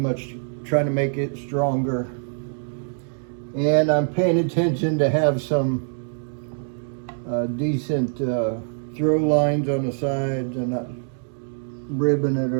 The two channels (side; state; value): left; silent; 61 dB below the other